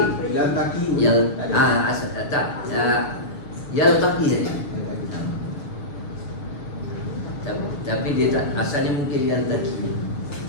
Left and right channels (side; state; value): right; late; 6.9 ms